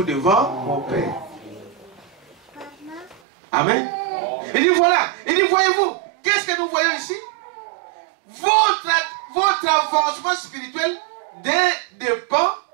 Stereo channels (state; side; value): drops out; left; at 3.2 s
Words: devant mon Père. Amen. Il dit voilà, il dit voyez-vous, qu'est-ce que nous voyons ici? Votre avancement spirituel dépend